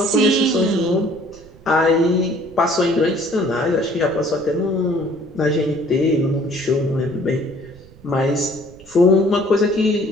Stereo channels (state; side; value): noise; right; rumble, 23 dB below the sound